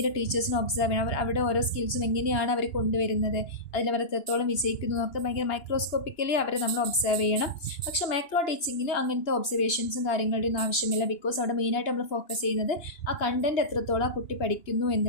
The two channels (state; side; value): late; right; 2.9 ms